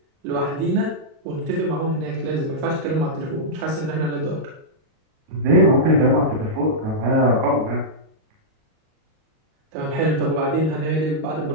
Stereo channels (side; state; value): left; late; 38 ms